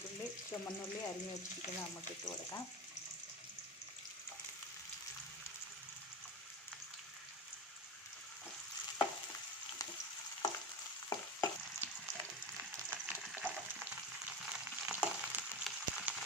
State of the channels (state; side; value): normal; both; correlation 0.24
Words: ചുമന്നുള്ളി അരിഞ്ഞു വെച്ചിരിക്കുന്നത് നമുക്ക് ഇട്ട് കൊടുക്കാം.